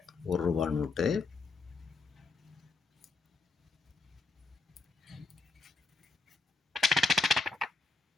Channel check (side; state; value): right; quieter; 4.0 dB